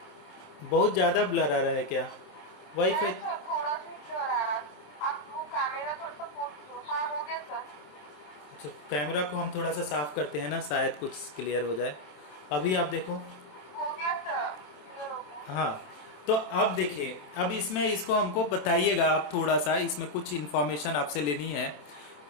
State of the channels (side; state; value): right; late; 27 ms